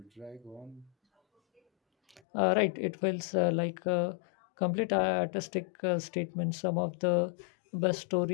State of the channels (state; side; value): drops out; right; at 2.2 s